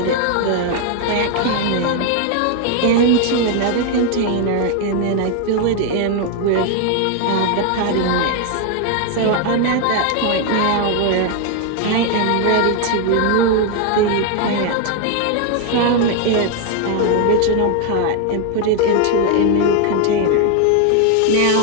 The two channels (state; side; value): different; both; correlation 0.00